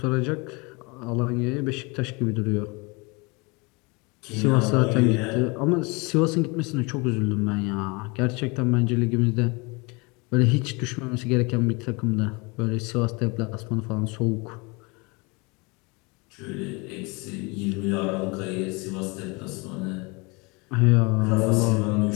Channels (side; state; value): right; quieter; 28.2 dB